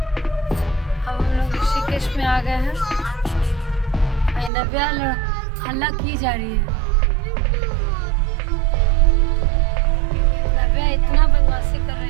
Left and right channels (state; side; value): drops out; left; at 4.5 s